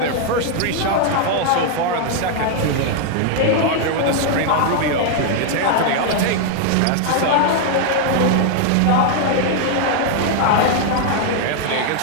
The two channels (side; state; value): both; different; correlation 0.00